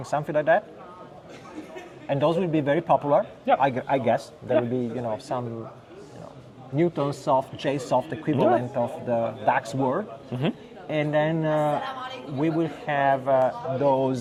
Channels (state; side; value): identical; both; correlation 1.00